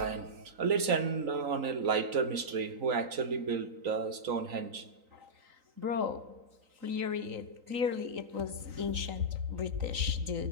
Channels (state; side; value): late; left; 3.9 ms